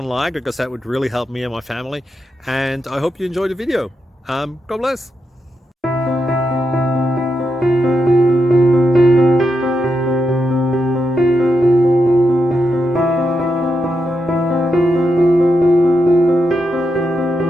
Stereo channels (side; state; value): both; normal; correlation 0.85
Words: like, because that would really help me and my family. And I hope you enjoy the video. God bless.